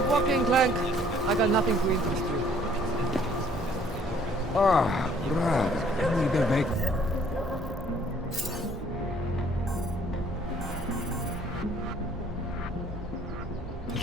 Walking, Clank. I got nothing to interest you. Ah, brother, can we be make...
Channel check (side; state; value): both; normal; correlation 0.59